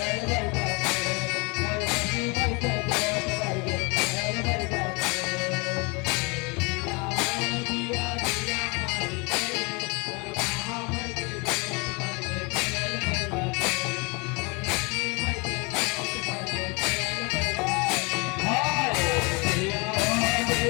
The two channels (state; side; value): quieter; right; 29.4 dB